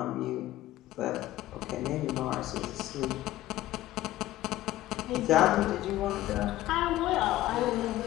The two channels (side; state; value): right; quieter; 15.3 dB